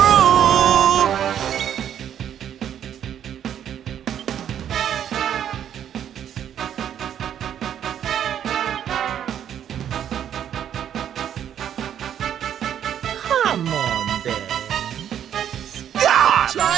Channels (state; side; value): quieter; left; 9.7 dB